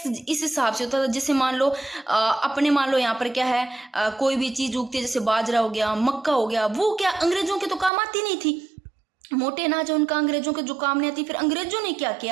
इस हिसाब से होता था, जैसे मान लो अपने मान लो यहाँ पर क्या है, कोई भी चीज उगती है, जैसे बाजरा हो गया, मक्का हो गया, वो क्या अंग्रेजों के तो काम आती नहीं थी। मोटे अनाज है उनका, अंग्रेजों के जो काम नहीं आती। फिर अंग्रेजों ने क्या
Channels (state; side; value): drops out; left; at 7.9 s